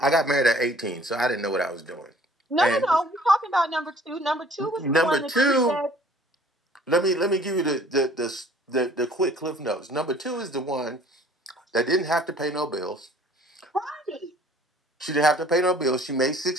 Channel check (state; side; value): normal; both; correlation 0.53